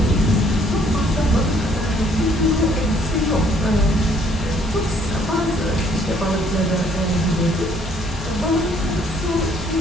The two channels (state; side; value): normal; both; correlation 0.63